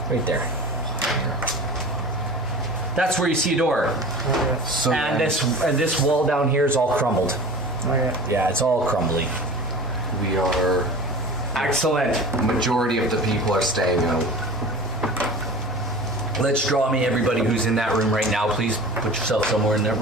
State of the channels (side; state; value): both; normal; correlation 0.36